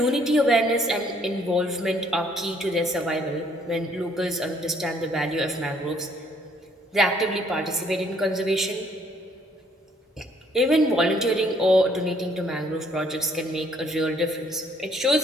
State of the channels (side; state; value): both; normal; correlation 0.64